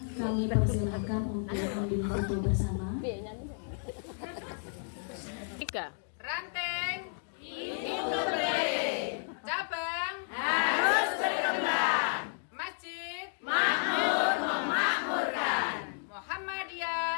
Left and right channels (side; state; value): right; silent; digital silence